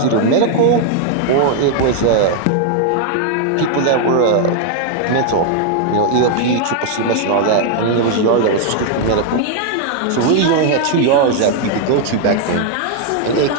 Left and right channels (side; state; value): both; different; correlation 0.00